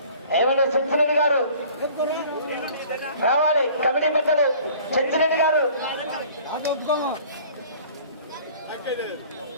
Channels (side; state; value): both; inverted; correlation -0.49